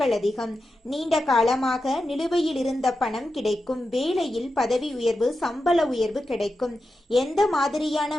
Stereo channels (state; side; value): normal; both; correlation 0.90